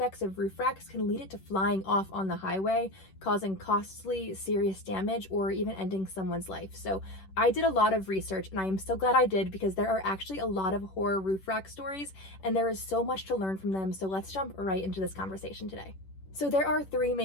of roof racks can lead it to flying off on the highway, causing costly, serious damage, or even ending someone's life. So I did a lot of research, and I am so glad I did because there are actually a lot of horror roof rack stories, and there is so much to learn from them. So let's jump right into this conversation today. So there are 3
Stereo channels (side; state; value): right; late; 10 ms